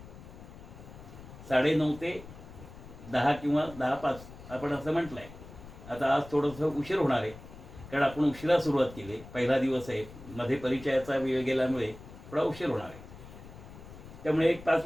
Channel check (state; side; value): noise; left; rumble, 16 dB below the sound